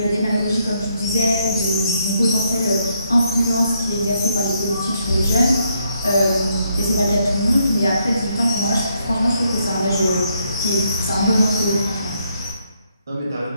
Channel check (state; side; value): inverted; both; correlation -0.75